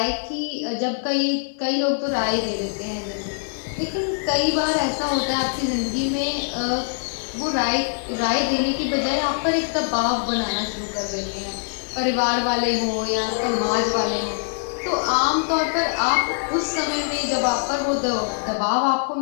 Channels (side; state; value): right; silent; 61 dB below the other